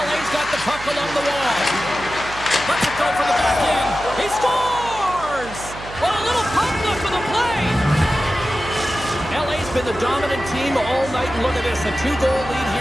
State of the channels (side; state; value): right; noise; hum, 14 dB below the sound